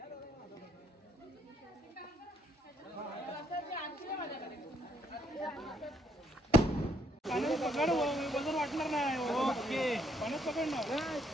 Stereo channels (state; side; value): normal; both; correlation 0.69